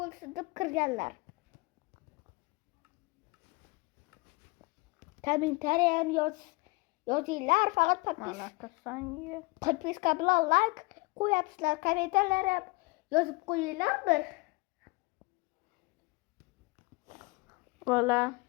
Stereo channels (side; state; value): right; quieter; 25.7 dB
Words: deb kirganlar. Kommentariy ham yozinglar, faqat подписка bilan like qo'yapsizlar, kommentariylar ham yozib qo'yinglar bir. Vola.